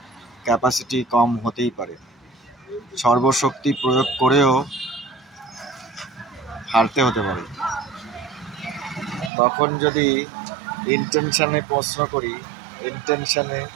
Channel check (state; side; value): drops out; left; at 9.3 s